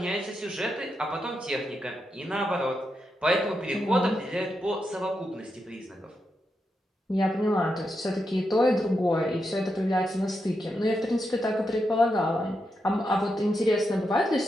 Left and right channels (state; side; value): normal; both; correlation 0.85